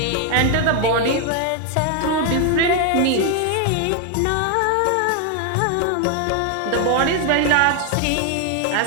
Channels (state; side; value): different; both; correlation 0.01